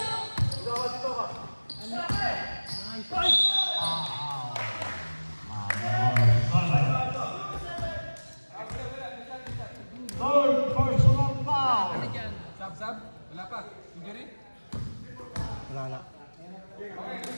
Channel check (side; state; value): both; inverted; correlation -1.00